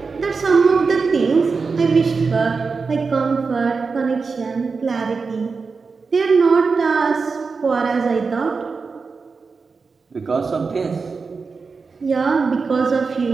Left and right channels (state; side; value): quieter; left; 4.7 dB